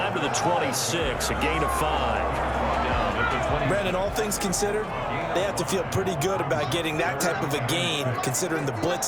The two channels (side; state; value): both; identical; correlation 1.00